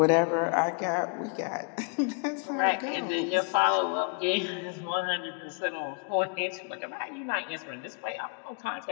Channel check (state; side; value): quieter; right; 39.8 dB